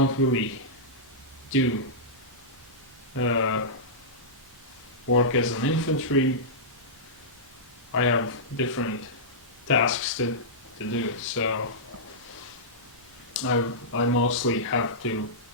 do work as an infantry. I have different tasks to do, so I mostly have to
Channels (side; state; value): both; normal; correlation -0.14